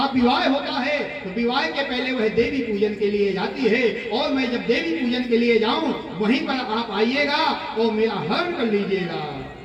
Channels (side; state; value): both; identical; correlation 1.00